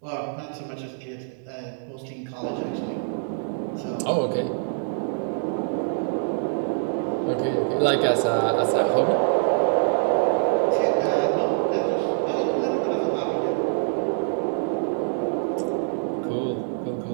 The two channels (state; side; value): silent; left; digital silence